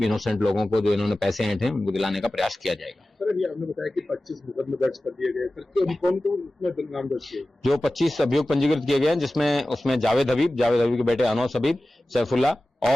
इनोसेंट लोगों को जो इन्होंने पैसे ऐंठे हैं उनको दिलाने का प्रयास किया जाएगा। सर, अभी आपने बताया कि 25 मुकदमे दर्ज कर दिए गए, सर कौन उसमें नाम दर्ज किए? जो 25 अभियोग पंजीकृत किए गए हैं, जिसमें उसमें जावेद हबीब के बेटे अनौस हबीब, सैफुल्ला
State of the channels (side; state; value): both; normal; correlation 0.96